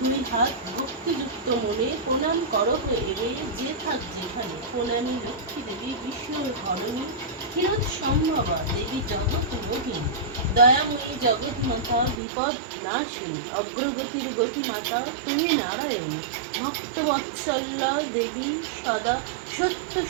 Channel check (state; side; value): drops out; left; at 12.2 s